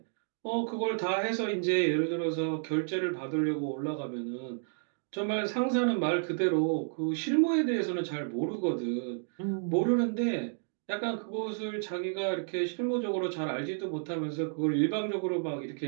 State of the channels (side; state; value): left; silent; digital silence